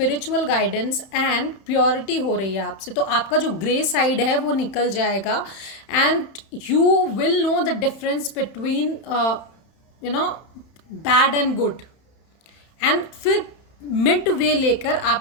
guidance and purity हो रही है आपसे। तो आपका जो ग्रे साइड है वो निकल जाएगा and you will know the difference between bad and good. And फिर मिड वे लेकर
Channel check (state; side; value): late; right; 31 ms